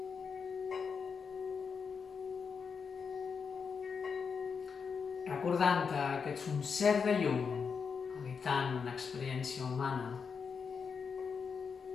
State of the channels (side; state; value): right; quieter; 5.9 dB